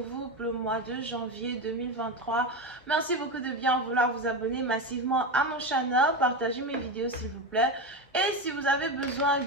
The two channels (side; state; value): both; normal; correlation 0.18